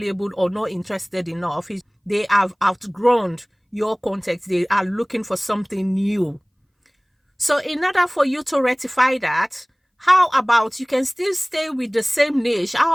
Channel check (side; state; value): both; identical; correlation 1.00